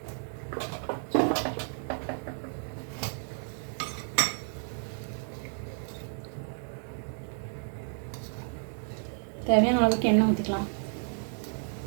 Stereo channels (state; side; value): silent; left; 57 dB below the other